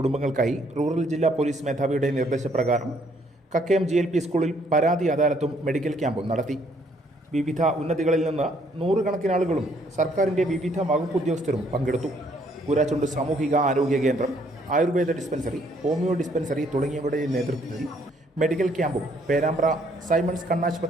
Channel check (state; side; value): normal; both; correlation 0.67